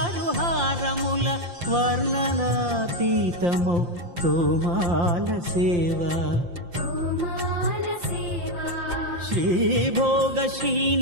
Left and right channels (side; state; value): left; late; 5.7 ms